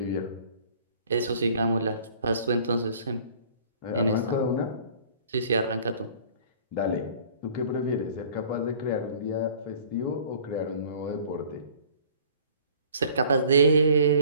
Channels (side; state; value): both; inverted; correlation -0.51